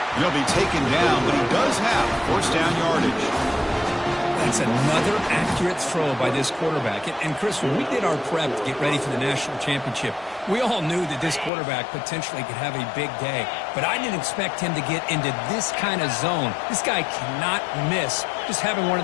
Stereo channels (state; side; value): drops out; right; at 11.5 s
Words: He'll be taken down, but he does have first down yardage. That's another accurate throw by this quarterback. And Chris, when we did our prep to get ready for the national championship, we all knew that this quarterback potentially could have a big day. But I didn't expect him to get into this kind of zone. This guy cannot miss just having one